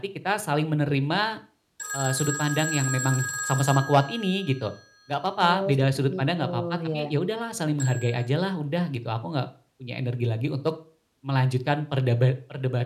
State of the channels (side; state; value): both; identical; correlation 1.00